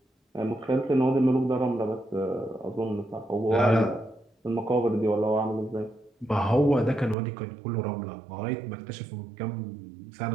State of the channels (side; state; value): left; drops out; at 7.2 s